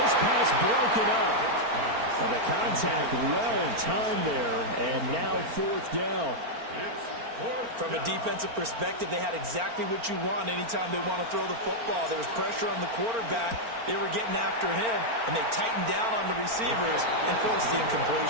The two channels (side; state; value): left; late; 4.4 ms